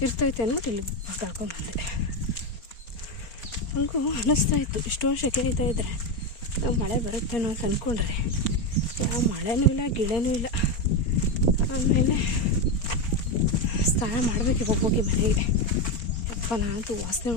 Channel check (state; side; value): late; right; 4.3 ms